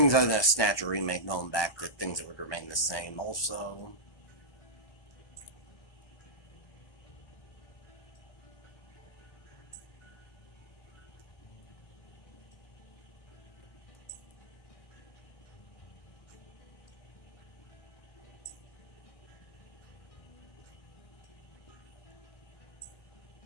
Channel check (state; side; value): late; right; 1.2 ms